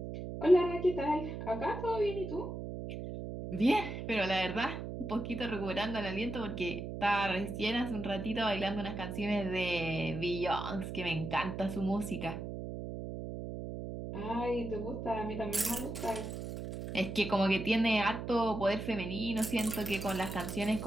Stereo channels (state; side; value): noise; right; hum, 6 dB below the sound